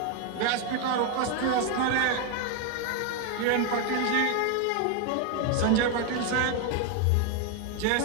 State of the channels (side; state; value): both; different; correlation 0.01